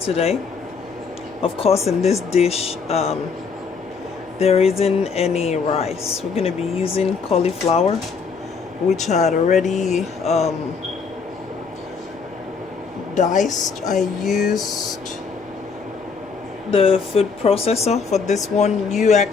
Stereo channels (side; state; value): right; quieter; 5.3 dB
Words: today. Of course, in this dish, there isn't any rice. We're going to be using cauliflower, which I had already diced. I used the food processor for this one. You